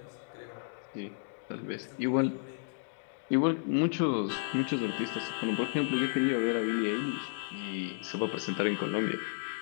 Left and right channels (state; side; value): silent; right; digital silence